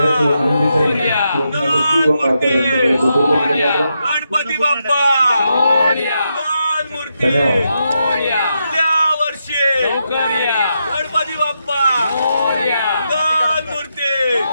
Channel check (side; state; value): both; inverted; correlation -0.83